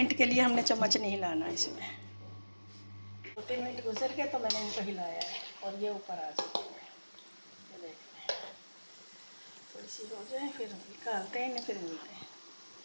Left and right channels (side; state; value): both; inverted; correlation -1.00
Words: के लिए हमने चम्मच नहीं हिलाना इसमें। 2-3 मिनट गुजर गए तो मैंने इनको हिलाया है और ये ऊपर आ चुकी है। ये देखते हैं, थोड़ी सी हो जाए फिर निकालते हैं इन्हें, फिर मिलते हैं।